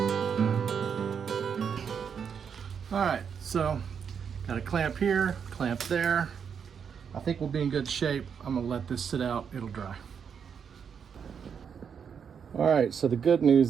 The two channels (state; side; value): quieter; left; 7.1 dB